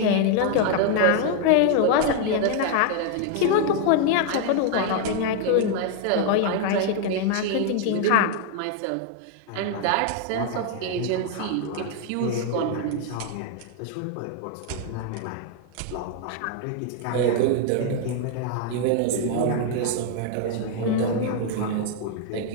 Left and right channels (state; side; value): different; both; correlation 0.00